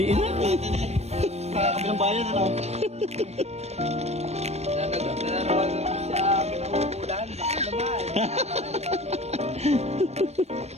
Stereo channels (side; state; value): left; late; 0.31 ms